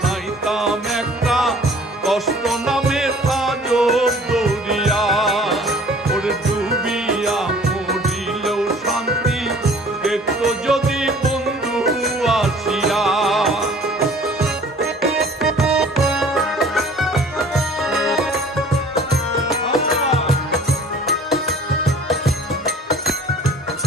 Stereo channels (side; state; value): both; normal; correlation 0.49